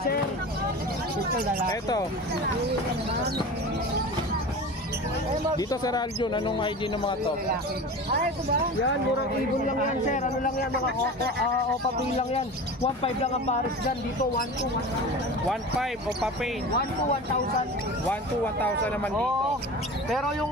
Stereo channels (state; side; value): normal; both; correlation 0.33